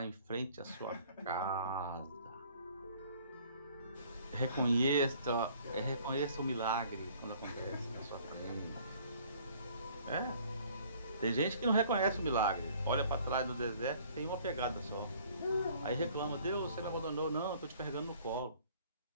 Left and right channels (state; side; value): inverted; both; correlation -0.56